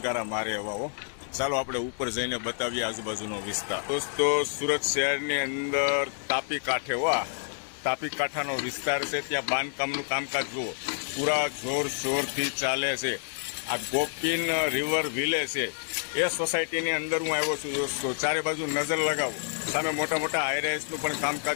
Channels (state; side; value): silent; right; 59 dB below the other